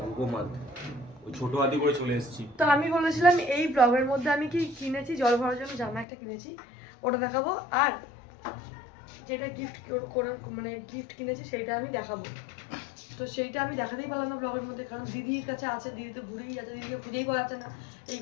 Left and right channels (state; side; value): drops out; right; at 6.1 s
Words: রুকো মাত, ওই ছোটো হাতি করে চলে এসেছি। তো আমি বলেছিলাম এই ব্লগের মধ্যে আমি কি কিনেছি, জল ভরার জন্য জামা একটা কিনেছি, ওটা দেখাবো। আর যেটা গিফট করে মানে গিফট কিনেছি সেইটা আমি দেখাবো। তো সেইটা আমি দেখাতেই পারলাম না ব্লগের মধ্যে, কারণ দিদির কাছে আছে, দিদি তো ঘুরেই যাচ্ছে, দিদিকে খুঁজেই পাওয়া যাচ্ছে না এই